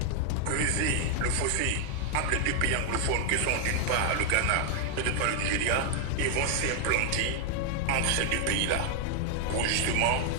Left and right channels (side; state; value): both; different; correlation 0.00